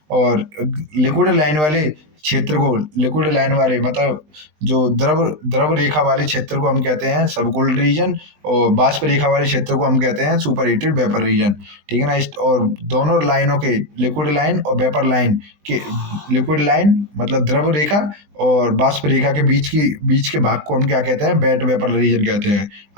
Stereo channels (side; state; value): left; late; 20 ms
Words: और लिक्विड लाइन वाले क्षेत्र को, लिक्विड लाइन वाले मतलब जो द्रव रेखा वाले क्षेत्र को हम कहते हैं सबकोल्ड रीजन, और बाष्प रेखा वाले क्षेत्र को हम कहते हैं सुपर हीटेड वेपर रीजन। ठीक है ना, और दोनों लाइनों के, लिक्विड लाइन और वेपर लाइन के, लिक्विड लाइन मतलब द्रव रेखा और बाष्प रेखा के बीच के भाग को हम क्या कहते हैं, वेट वेपर रीजन कहते हैं,